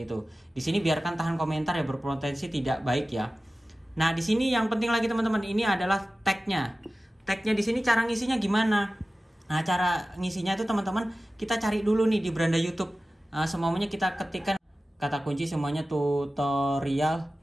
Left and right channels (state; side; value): normal; both; correlation 0.95